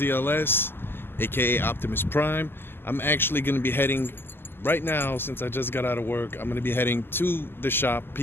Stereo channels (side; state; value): right; late; 0.11 ms